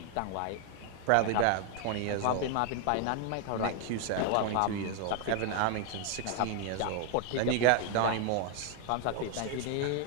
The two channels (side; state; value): both; different; correlation 0.00